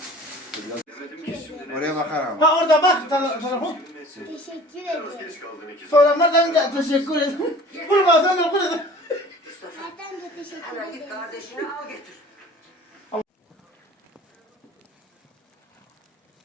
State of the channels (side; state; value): both; normal; correlation 0.45